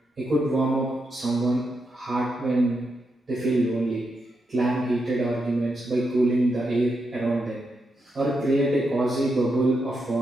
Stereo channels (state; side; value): normal; both; correlation 0.84